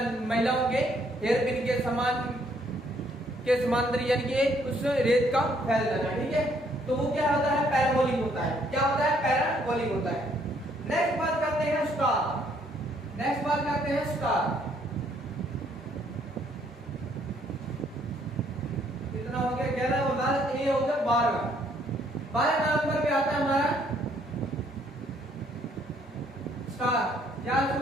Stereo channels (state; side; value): normal; both; correlation 0.67